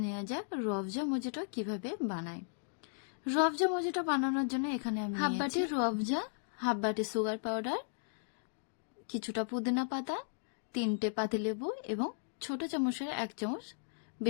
নেওয়া যাক রুয়াবজা মজিটো কিভাবে বানাই। রুয়াবজা মজিটো বানানোর জন্য এখানে আমি হাফ বাটি রুয়াবজা, হাফ বাটি সুগার পাউডার, কিছুটা পুদিনা পাতা, 3টে পাতিলেবু এবং ছোট চামচের 1 চামচ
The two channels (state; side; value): silent; right; digital silence